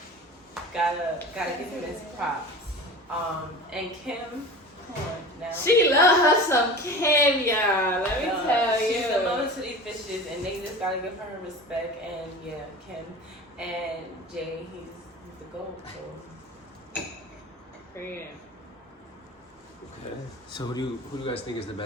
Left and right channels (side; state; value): both; normal; correlation 0.35